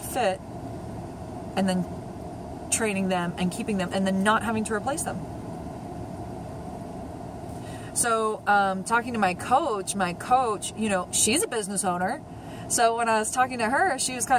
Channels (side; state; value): both; identical; correlation 1.00